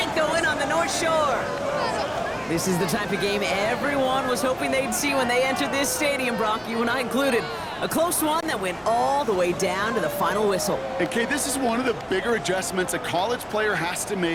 the win on the North Shore. This is the type of game everyone was hoping they'd see when they entered this stadium, Brock, you and I included. A close one that went all the way down to the final whistle. Okay, this is one of the bigger adjustments a college player has to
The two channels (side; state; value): both; identical; correlation 1.00